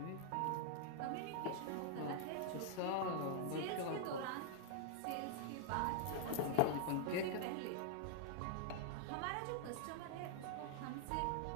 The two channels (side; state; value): both; different; correlation -0.01